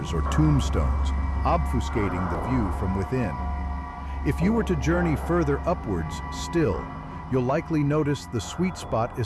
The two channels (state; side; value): identical; both; correlation 1.00